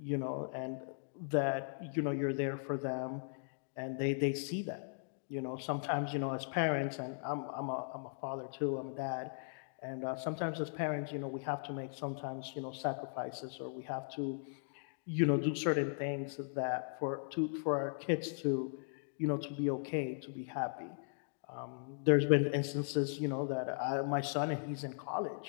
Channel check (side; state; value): right; silent; digital silence